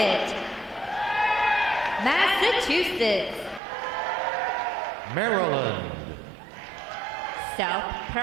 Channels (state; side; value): drops out; left; at 3.6 s